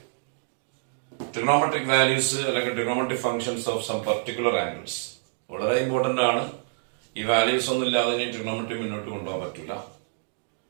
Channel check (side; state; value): left; silent; digital silence